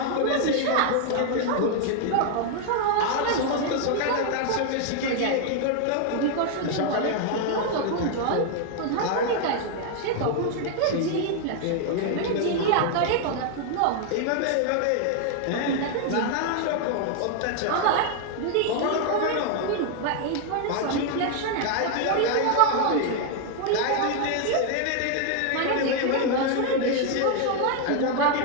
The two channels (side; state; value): both; different; correlation 0.00